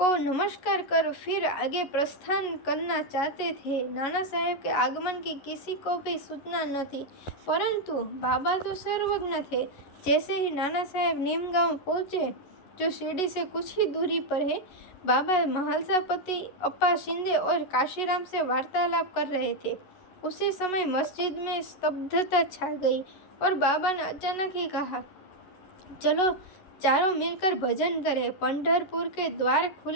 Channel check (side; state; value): right; late; 11 ms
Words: नमस्कार कर फिर आगे प्रस्थान करना चाहते थे। नाना साहेब के आगमन की किसी को भी सूचना न थी, परंतु बाबा तो सर्वज्ञ थे। जैसे ही नाना साहेब नीम गांव पहुँचे, जो शिरडी से कुछ ही दूरी पर है, बाबा महालसापति अप्पा शिंदे और काशीराम से वार्तालाप कर रहे थे। उसी समय मस्जिद में स्तब्धता छा गई और बाबा ने अचानक ही कहा, चलो चारों मिलकर भजन करें। पंढरपुर के द्वार